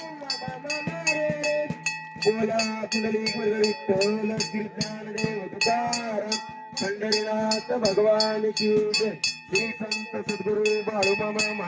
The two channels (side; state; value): both; identical; correlation 1.00